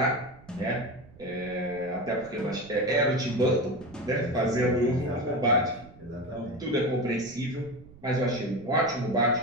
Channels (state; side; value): noise; right; rumble, 21 dB below the sound